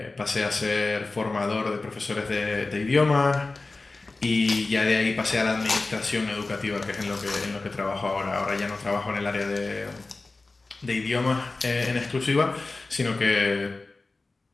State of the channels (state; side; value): quieter; right; 3.5 dB